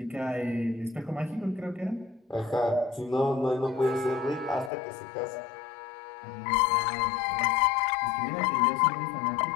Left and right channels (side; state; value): right; drops out; at 4.7 s